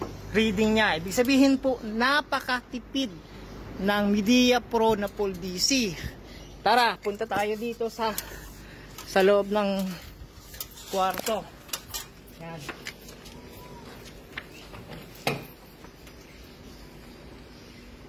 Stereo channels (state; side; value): identical; both; correlation 1.00